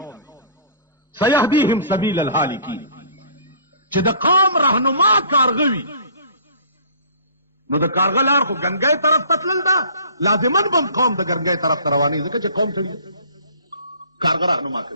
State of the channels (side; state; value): both; inverted; correlation -0.48